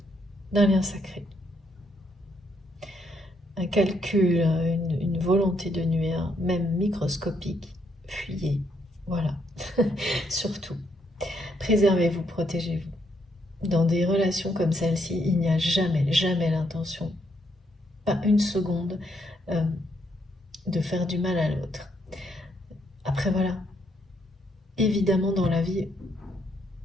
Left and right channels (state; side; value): normal; both; correlation 0.74